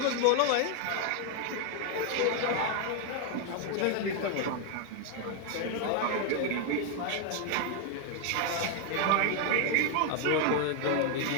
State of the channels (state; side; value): different; both; correlation 0.01